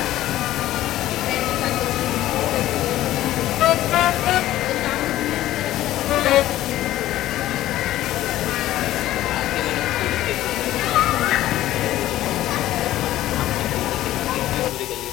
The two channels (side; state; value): right; quieter; 14.4 dB